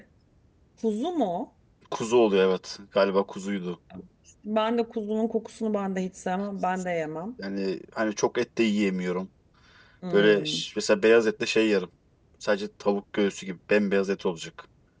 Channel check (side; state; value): both; identical; correlation 1.00